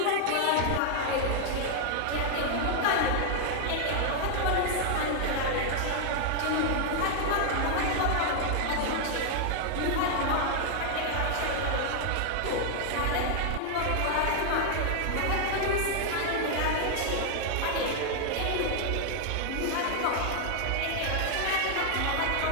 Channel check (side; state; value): both; different; correlation 0.00